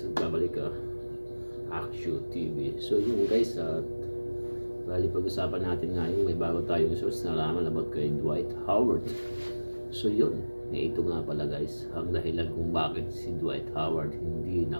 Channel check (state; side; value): inverted; both; correlation -1.00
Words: Babalik ka Action TV. So yun guys, bali pag-usapan natin ngayon, may bago tayong source na nalaman about kay Dwight Howard. So yun, ito nga pala guys, ang dahilan kung bakit si Dwight Howard hindi